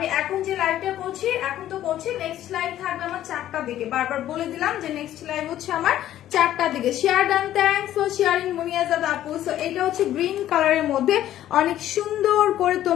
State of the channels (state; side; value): quieter; right; 12.6 dB